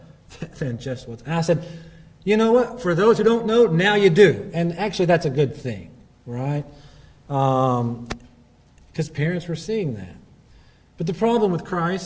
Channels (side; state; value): both; identical; correlation 1.00